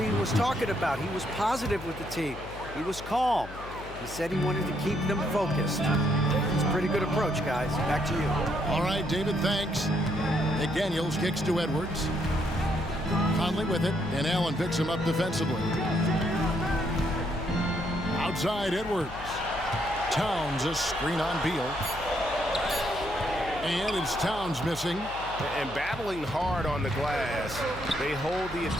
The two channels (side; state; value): left; noise; hum, 14 dB below the sound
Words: was talking about. He was positive with the team. He was calm. He said he wanted to keep them focused. It's a pretty good approach, guys. Back to you. All right, David, thanks. McDaniels kicks to Edwards. Conley with it, and Allen picks him up defensively. Outside, Edwards. Towns, a screen on Beal. And it's Towns missing. And battling hard on the glass, they hold the